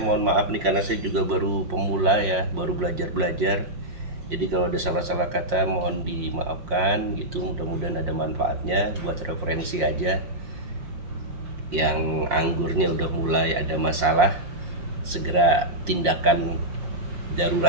maaf nih karena saya juga baru pemula ya, baru belajar. Jadi kalau ada salah-salah kata mohon dimaafkan gitu. Mudah-mudahan ada manfaatnya, buat referensi aja. Yang anggurnya udah mulai ada masalah, segera tindakan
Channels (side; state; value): left; late; 5.6 ms